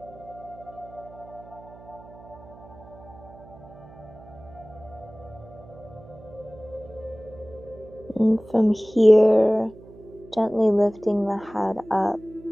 And from here, gently lifting the head up,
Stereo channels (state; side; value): noise; right; hum, 20 dB below the sound